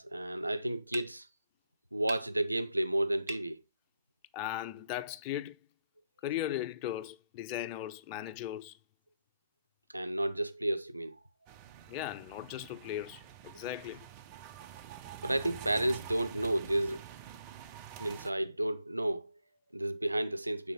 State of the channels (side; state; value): both; inverted; correlation -0.80